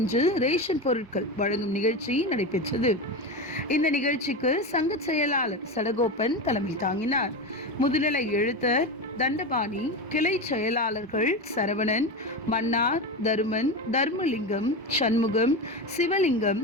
ரேஷன் பொருட்கள் வழங்கும் நிகழ்ச்சி நடைபெற்றது. இந்த நிகழ்ச்சிக்கு சங்க செயலாளர் சடகோபன் தலைமை தாங்கினார். முதுநிலை எழுத்தர் தண்டபாணி, கிளை செயலாளர்கள் சரவணன், மன்னார், தருமன், தர்மலிங்கம், சண்முகம், சிவலிங்கம்,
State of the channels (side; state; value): both; normal; correlation 0.20